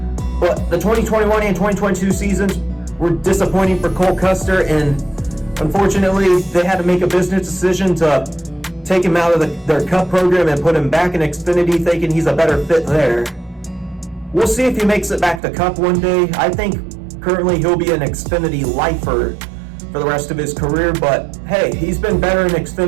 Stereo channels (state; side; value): drops out; left; at 15.4 s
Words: But the 2021 and 2022 seasons were disappointing for Cole Custer, and unfortunately, they had to make a business decision to take him out of their Cup program and put him back in Xfinity, thinking he's a better fit there. We'll see if he makes it back to Cup one day. I think currently he'll be an Xfinity lifer for the rest of his career, but hey, he's been better in